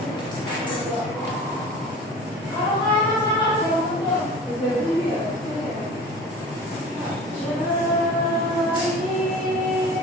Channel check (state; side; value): normal; both; correlation 0.39